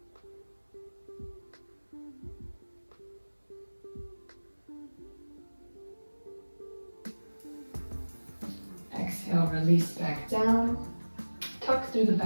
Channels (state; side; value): inverted; both; correlation -1.00